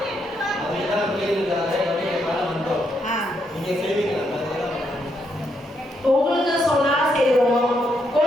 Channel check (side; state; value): both; normal; correlation 0.78